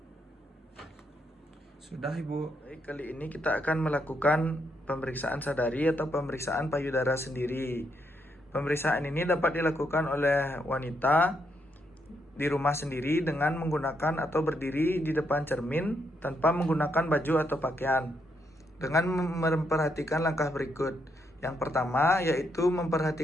Sudah ibu. Baik, kali ini kita akan melakukan pemeriksaan sadari atau pemeriksaan payudara sendiri. Pemeriksaan ini dapat dilakukan oleh wanita di rumah sendiri dengan menggunakan atau berdiri di depan cermin tanpa menggunakan baju atau pakaian. Dengan memperhatikan langkah berikut. Yang pertama yaitu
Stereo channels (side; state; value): both; normal; correlation 0.78